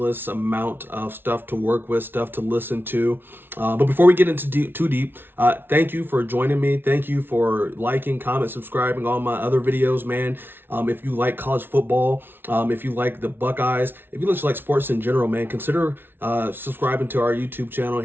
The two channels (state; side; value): late; left; 0.10 ms